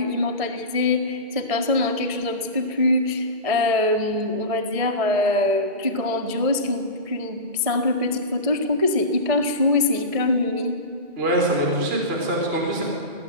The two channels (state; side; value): late; left; 1.7 ms